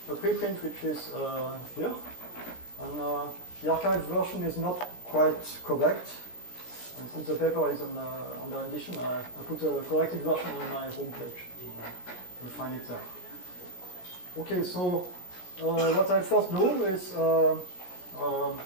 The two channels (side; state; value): right; late; 17 ms